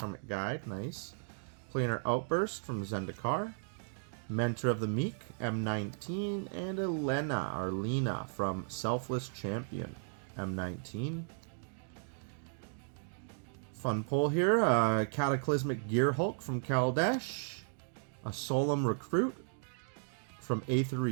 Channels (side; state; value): left; silent; digital silence